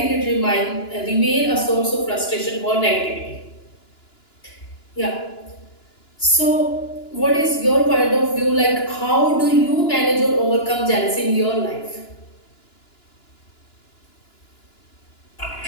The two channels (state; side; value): late; right; 2.9 ms